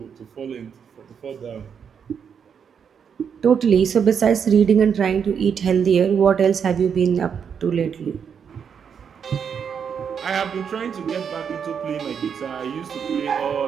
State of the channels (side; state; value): left; quieter; 7.2 dB